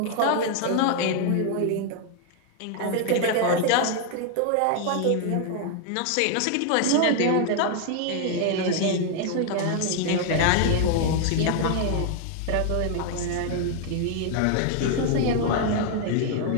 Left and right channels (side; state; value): both; different; correlation 0.00